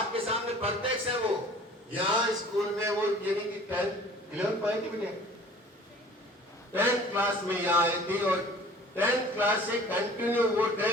सामने प्रत्यक्ष है, वो यहाँ स्कूल में वो यानी कि 11th पढ़ी थी बेटे, 10th क्लास में यहाँ आई थी, और 10th क्लास से कंटिन्यू वो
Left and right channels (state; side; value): normal; both; correlation 0.47